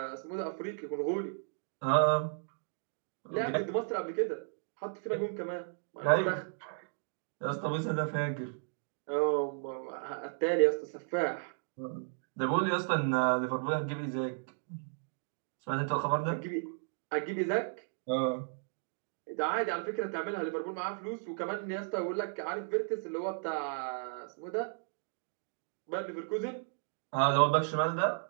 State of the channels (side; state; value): left; silent; digital silence